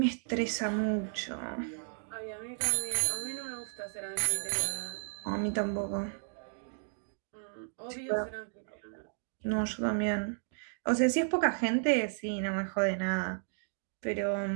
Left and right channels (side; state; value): left; silent; digital silence